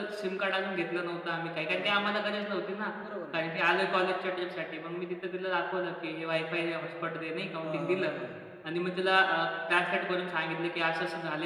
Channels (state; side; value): identical; both; correlation 1.00